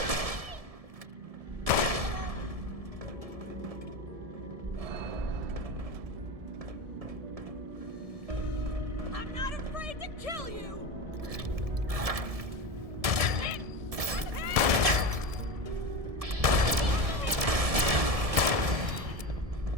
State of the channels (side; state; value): left; late; 1.7 ms